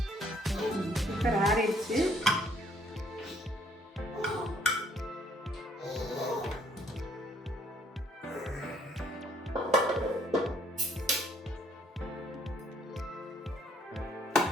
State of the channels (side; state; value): both; normal; correlation 0.64